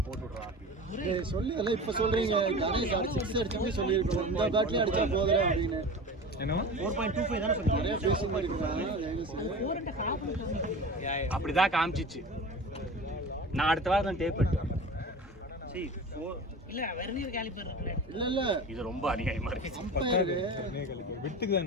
சொல்லி எல்லாம் இப்ப சொல்றீங்க கணேஷ் அடிச்சு அடிச்சு சொல்லியிருக்கோம் இந்த பேட்லயும் அடிச்சா போதும் அப்படின்னு 4.25 தானே சொன்னீங்க நிறைய பேசி அப்படிதான் காமிச்சிச்சு நான் அடுத்த வாரம் தான் டேப் எடுத்தேன் சரி இல்ல வெர்னியர் காலிப்பர் இருக்குல இல்ல இது ரொம்ப அநியாயமா இருக்கு அம்பையர் விட்டுக்கு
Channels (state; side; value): normal; both; correlation 0.34